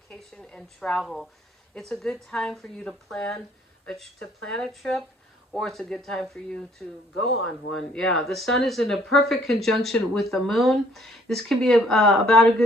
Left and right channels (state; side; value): normal; both; correlation 0.62